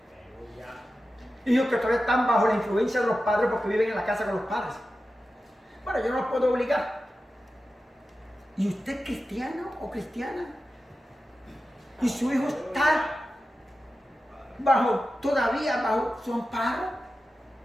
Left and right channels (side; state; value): both; normal; correlation 0.93